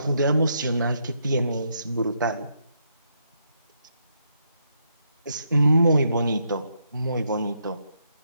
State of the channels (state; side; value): inverted; both; correlation -0.78